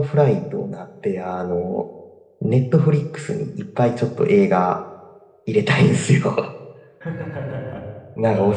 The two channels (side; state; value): both; identical; correlation 1.00